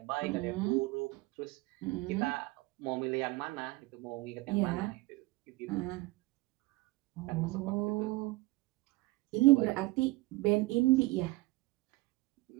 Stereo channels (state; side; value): quieter; left; 21.7 dB